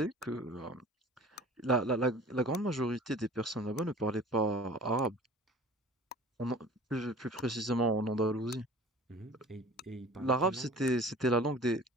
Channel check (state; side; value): normal; both; correlation 0.44